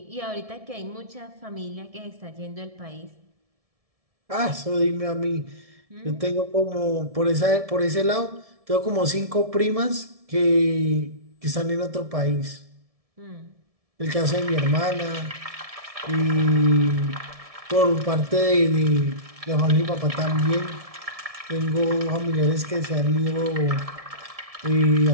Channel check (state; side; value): late; left; 1.7 ms